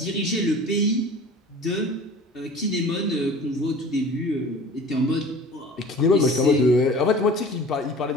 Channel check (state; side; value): normal; both; correlation 0.42